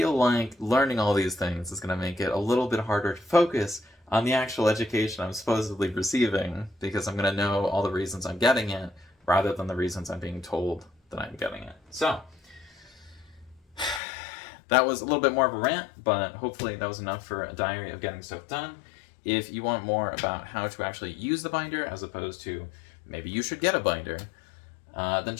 like learning all these things is going to make it a little bit harder to focus on the actual education I'm supposedly receiving, because I'm going to know all the reasons I'm getting it, rather than the reasons I'm being told that I'm getting it. So, that was a little bit more of a rant, but hopefully that was enough for a diary of getting stuff done. If you want more about how to actually use the binder, as opposed to maybe you should get a binder, then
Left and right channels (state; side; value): drops out; right; at 14.0 s